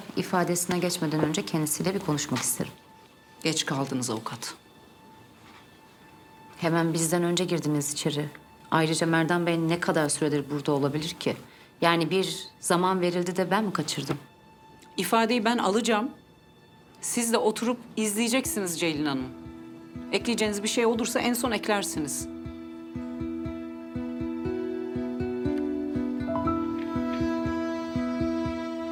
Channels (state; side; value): identical; both; correlation 1.00